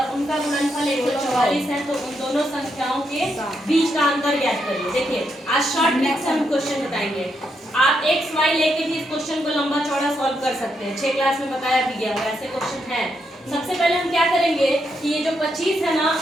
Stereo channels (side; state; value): both; normal; correlation 0.80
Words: उनका गुणनफल 144 है, तो उन दोनों संख्याओं के बीच का अंतर ज्ञात करिए। देखिए आज शॉर्ट ट्रिक से हम क्वेश्चन बताएंगे। आप एक्स वाई लेके भी इस क्वेश्चन को लंबा चौड़ा सॉल्व कर सकते हैं, 6 क्लास में बताया भी गया है, ऐसे क्वेश्चन है। सबसे पहले हम क्या करेंगे कि ये जो 25 है ना